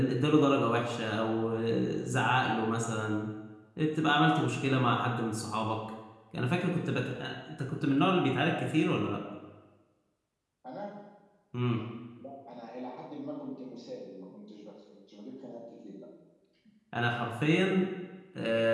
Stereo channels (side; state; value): both; identical; correlation 1.00